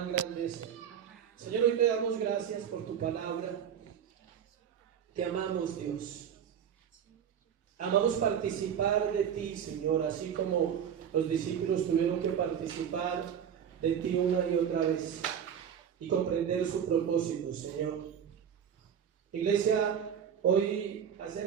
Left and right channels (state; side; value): quieter; left; 8.4 dB